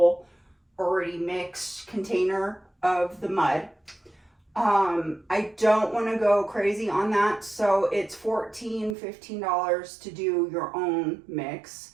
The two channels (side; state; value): left; drops out; at 9.0 s